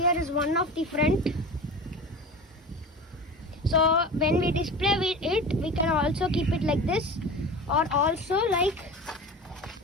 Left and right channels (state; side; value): normal; both; correlation 0.33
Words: is one of the front. So when we display it, we can also keep it like this, or also like